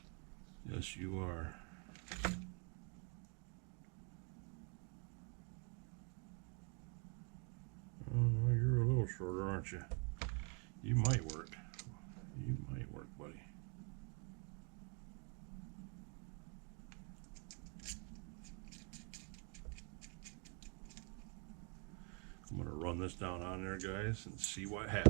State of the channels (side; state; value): left; quieter; 35.5 dB